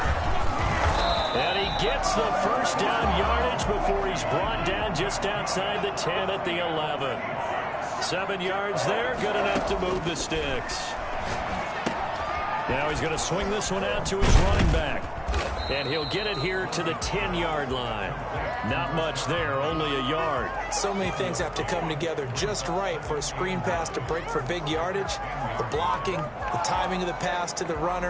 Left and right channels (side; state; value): both; identical; correlation 1.00